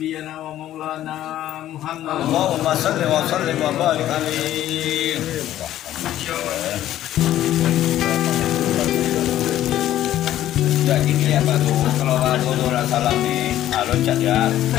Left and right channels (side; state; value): right; quieter; 12.8 dB